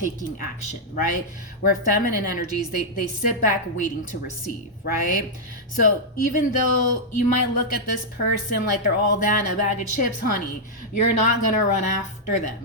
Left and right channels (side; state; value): both; normal; correlation -0.06